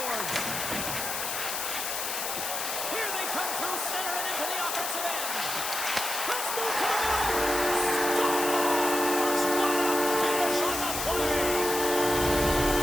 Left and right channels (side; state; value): left; noise; hiss, 3 dB below the sound